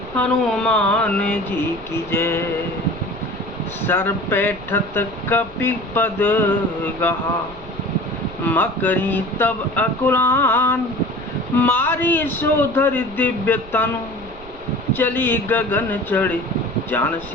हनुमान जी की जय। सर पैठत कपि पद गहा, मकरी तब अकुलान। मारी सोधर दिव्य तनु, चली गगन चढ़े जान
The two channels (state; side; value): noise; right; rumble, 19 dB below the sound